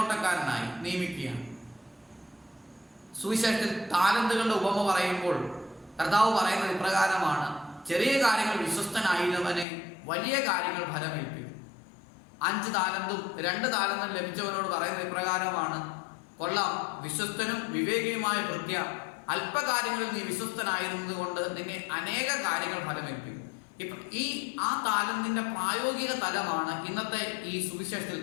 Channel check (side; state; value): right; drops out; at 9.7 s